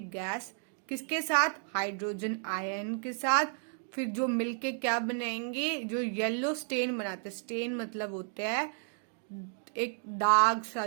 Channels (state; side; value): silent; left; 55 dB below the other